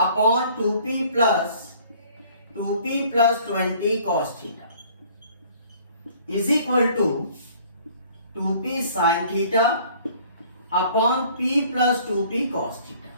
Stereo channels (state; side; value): inverted; both; correlation -0.55